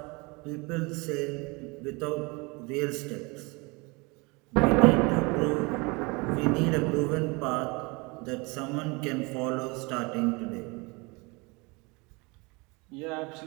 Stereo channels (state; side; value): quieter; left; 27.3 dB